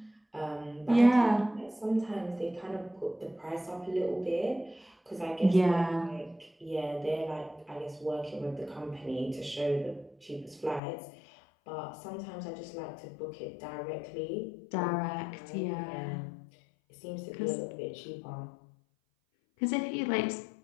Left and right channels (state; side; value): drops out; right; at 10.8 s